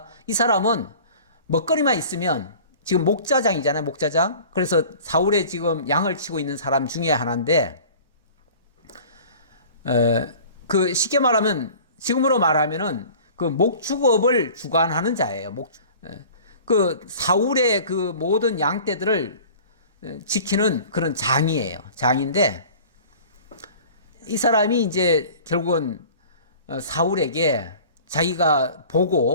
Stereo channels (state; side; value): inverted; both; correlation -0.44